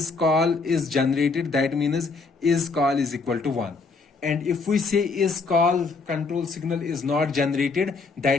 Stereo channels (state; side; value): quieter; right; 4.3 dB